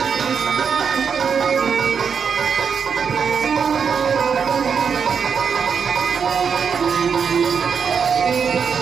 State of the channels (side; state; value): left; quieter; 6.5 dB